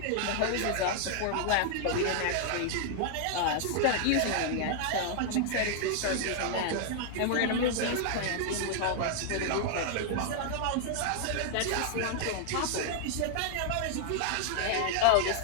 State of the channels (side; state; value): both; different; correlation 0.00